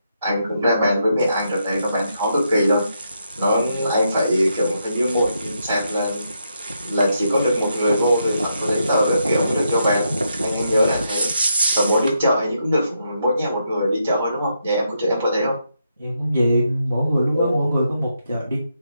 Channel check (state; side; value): inverted; both; correlation -0.80